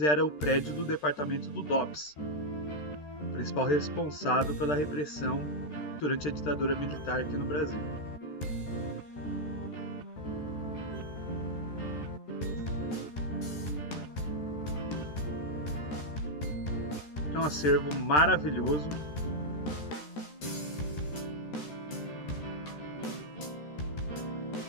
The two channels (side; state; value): right; late; 13 ms